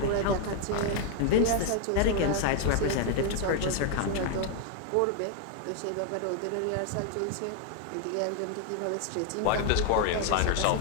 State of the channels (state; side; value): different; both; correlation 0.00